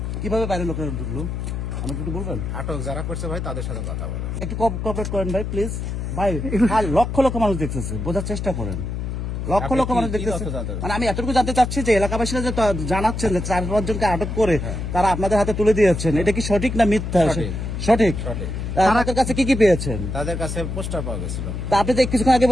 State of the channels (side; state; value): left; noise; hum, 4 dB below the sound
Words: কিভাবে বাইরের লোকেরা ঢুকলো আমাকে একটু বলবেন? আটক যারা করছে ভাই তাদের সাথে কথা বলেন। একটু কোঅপারেট করেন ভাই প্লিজ। ভাই লক্ষ লক্ষ মানুষ দেখতেছে, বোঝার চেষ্টা করেন। লক্ষ লক্ষ মানুষ দেখতেছে, মানে আমি এতটুকু জানতে চাচ্ছি যে এলাকাবাসীরা যে জানাচ্ছেন যে 4-5 জনকে আটক করে তারা আপনাদের হাতে তুলে দিয়েছেন, এটা কি সঠিক না মিথ্যা? সঠিক। তাদের কাছে কি কি পেয়েছেন? তাদের কাছে পোস্টার পাওয়া গেছিল। তা আপনি যে কিছুক্ষণ আগে